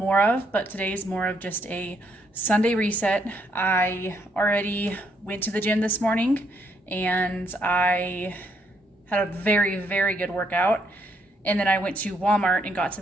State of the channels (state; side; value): normal; both; correlation 0.73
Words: of, but today's more of just a Sunday reset. I already went to the gym this morning and I had a very, very good workout. And then I went to Walmart and got